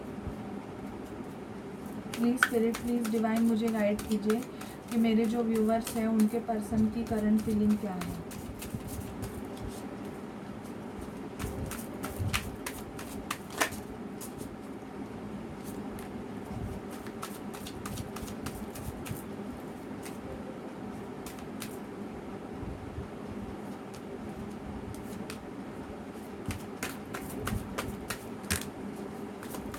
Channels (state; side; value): identical; both; correlation 1.00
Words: प्लीज़ स्पिरिट, प्लीज़ डिवाइन मुझे गाइड कीजिए कि मेरे जो व्यूवर्स हैं उनके पर्सन की करंट फीलिंग क्या है।